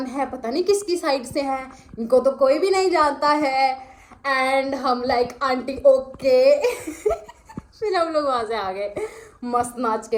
है, पता नहीं किसकी साइड से हैं, इनको तो कोई भी नहीं जानता है। एंड हम लाइक आंटी ओके। फिर हम लोग वहाँ से आ गए मस्त नाच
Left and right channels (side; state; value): both; identical; correlation 1.00